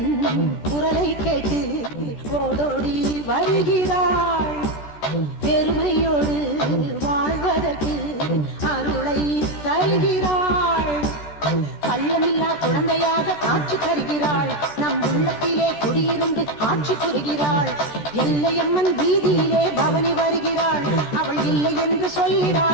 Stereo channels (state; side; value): late; right; 14 ms